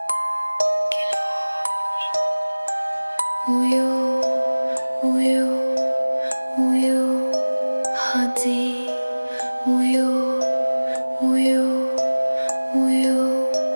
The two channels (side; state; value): both; inverted; correlation -1.00